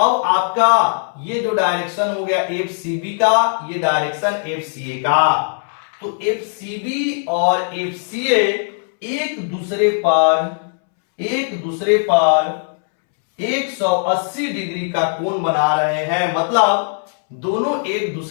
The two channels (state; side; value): silent; right; 66 dB below the other